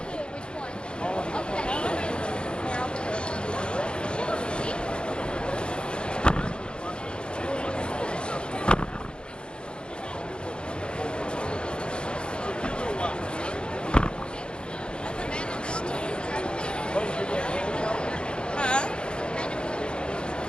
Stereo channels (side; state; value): right; late; 0.053 ms